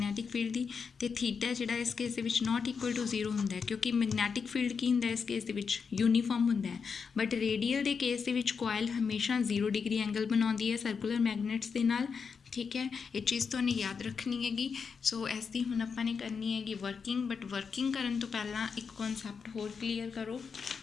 ਫੀਲਡ ਦੀ। ਅਤੇ ਥੀਟਾ ਜਿਹੜਾ ਇਸ ਕੇਸ ਦੇ ਵਿੱਚ ਨੋਟ ਇਕੁਅਲ ਟੂ 0 ਹੁੰਦਾ ਹੈ, ਕਿਉਂਕਿ ਮੈਗਨੈਟਿਕ ਫੀਲਡ ਕੀ ਹੁੰਦਾ ਇਸ ਕੇਸ ਦੇ ਵਿੱਚ? ਯੂਨੀਫਾਰਮ ਹੁੰਦਾ ਹੈ। ਬਟ ਰੇਡੀਅਲ ਦੇ ਕੇਸ ਦੇ ਵਿੱਚ ਕੋਇਲ ਹਮੇਸ਼ਾ 0 ਡਿਗਰੀ ਐਂਗਲ ਬਣਾਉਂਦੀ ਹੈ ਸਰਕੂਲਰ ਮੈਗਨੇਟਸ ਦੇ ਨਾਲ, ਠੀਕ ਹੈ। ਇਹ ਚੀਜ਼ ਤੁਹਾਨੂੰ ਯਾਦ ਰੱਖਣੀ ਹੈਗੀ। ਸੋ ਇਸ ਦੀ ਹੁਣ ਆਪਾਂ ਨੇ ਕਰਨੀ ਹੈਗੀ ਵਰਕਿੰਗ, ਬਟ ਵਰਕਿੰਗ ਕਰਨ ਤੋਂ ਪਹਿਲਾਂ ਇੱਕ ਕਨਸੈਪਟ ਹੋਰ ਕਲੀਅਰ ਕਰੋ।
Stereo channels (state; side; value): quieter; right; 5.8 dB